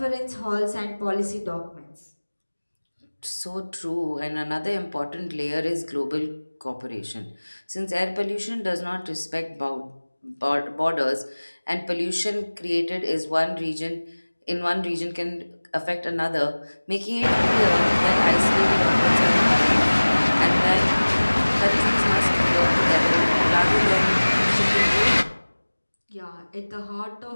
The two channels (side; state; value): both; inverted; correlation -1.00